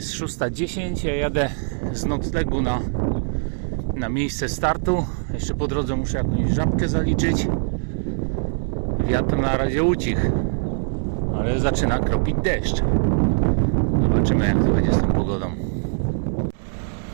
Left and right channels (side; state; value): left; silent; digital silence